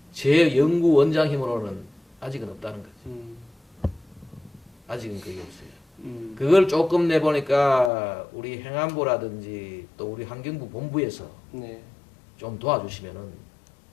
제 연구원장 힘으로는 아직은 없다는 거죠. 아직은 그게 없어요. 그걸 조금 내보니까 우리 행안부라든지 또 우리 환경부 본부에서 좀 도와주시면은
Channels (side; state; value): right; drops out; at 7.9 s